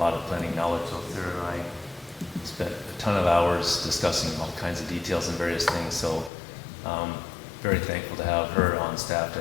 of planning knowledge. So Sarah and I spent a ton of hours discussing all kinds of details and various things. So very thankful to have her on staff to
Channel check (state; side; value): drops out; right; at 6.3 s